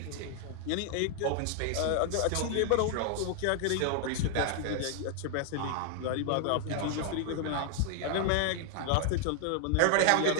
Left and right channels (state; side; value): different; both; correlation 0.00